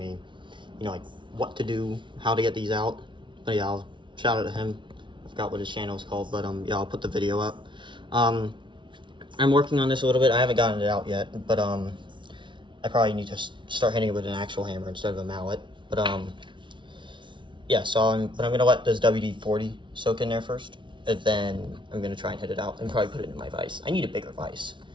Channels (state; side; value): late; left; 0.24 ms